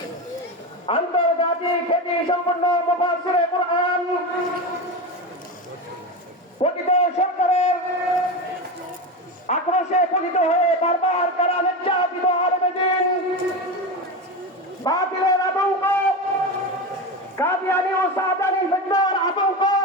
আন্তর্জাতিক খ্যাতি সম্পন্ন মুফাসসিরে কুরআন পতিত সরকারের আক্রোশে পতিত হয়ে বারবার কারা নির্যাতিত আলেমে দ্বীন বাতিলের আতঙ্ক কাদিয়ানি ও সাদানি ফিতনার আতঙ্ক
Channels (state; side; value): normal; both; correlation 0.20